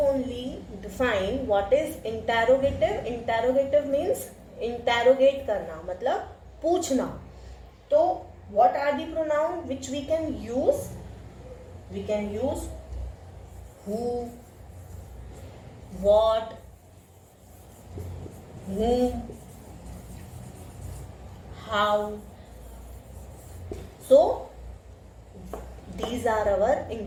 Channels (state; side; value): identical; both; correlation 1.00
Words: define what is interrogative. Interrogative means interrogate करना, मतलब पूछना. तो what are the pronoun which we can use? We can use who, what, whom, how. So these are our